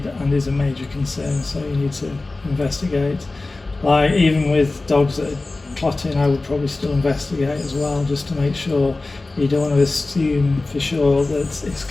and is a major concern, so you need to investigate. Like even with dogs that are clotting, I would probably still investigate as well, just to make sure. You don't want to assume for sure that it's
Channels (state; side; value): quieter; right; 3.2 dB